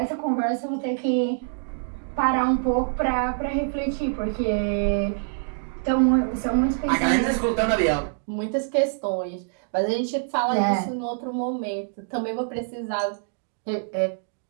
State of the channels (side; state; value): left; silent; digital silence